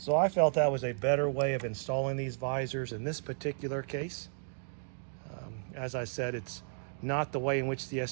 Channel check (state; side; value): silent; left; digital silence